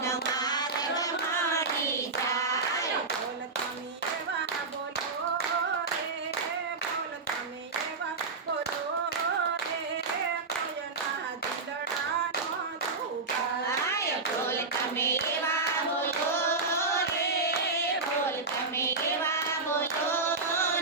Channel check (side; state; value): left; quieter; 4.0 dB